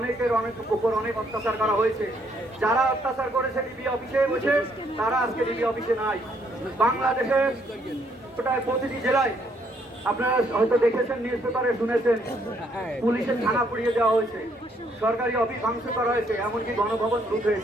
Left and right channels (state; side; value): normal; both; correlation 0.70